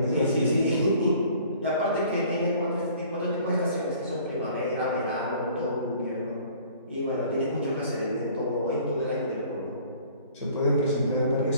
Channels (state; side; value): inverted; both; correlation -0.52